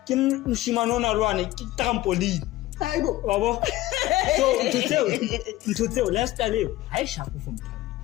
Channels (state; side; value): quieter; right; 16.7 dB